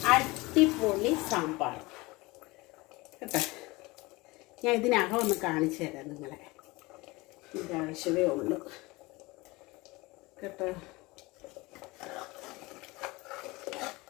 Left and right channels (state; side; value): quieter; right; 22.7 dB